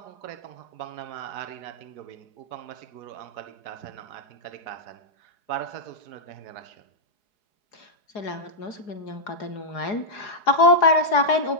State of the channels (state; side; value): late; right; 4.8 ms